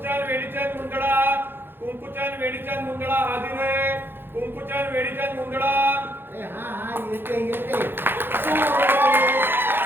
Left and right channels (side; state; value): left; late; 0.10 ms